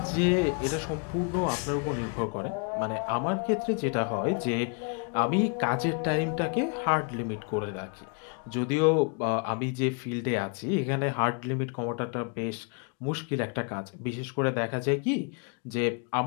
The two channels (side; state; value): right; quieter; 37.6 dB